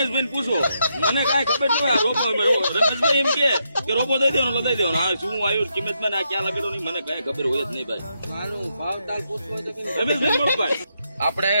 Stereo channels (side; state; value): both; inverted; correlation -0.80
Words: પૂછો, મને કાંઈ ખબર ન હોય. આ રોબો રમેશભાઈ એમ કે રોબો દઈ દેવાનો લઈ દેવાનો. હા શું આવ્યું કિંમતમાં ને આ ક્યાં લગાડો નહીં મને કાંઈ ખબર હોય જ નહીં ભાઈ. રમેશભાઈ બોલો ભાઈ. આપણે